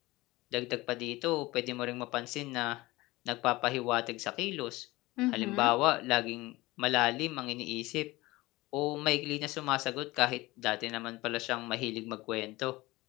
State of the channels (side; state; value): right; quieter; 20.2 dB